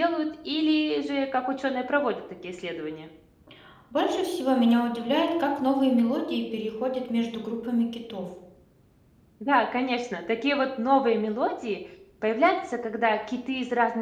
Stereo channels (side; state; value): both; identical; correlation 1.00